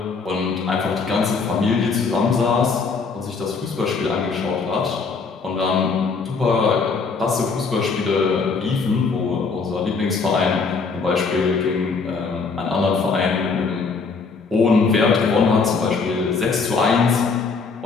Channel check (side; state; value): right; quieter; 4.8 dB